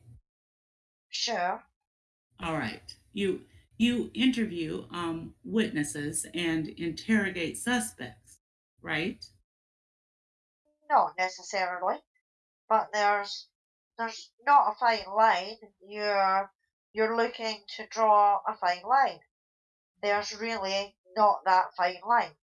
sure. All right. You interview witnesses and interrogate suspects, right? Not necessarily. But there's not a fine line. You're looking to draw a fine line. There's really not that fine line.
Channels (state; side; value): identical; both; correlation 1.00